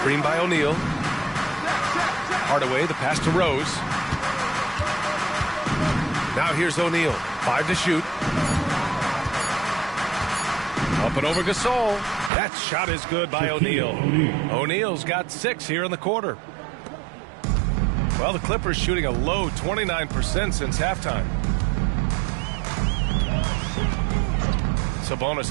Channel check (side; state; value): left; drops out; at 12.3 s